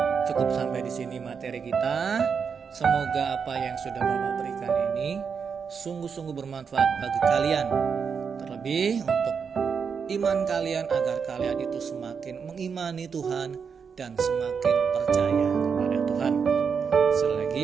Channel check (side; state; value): left; quieter; 6.2 dB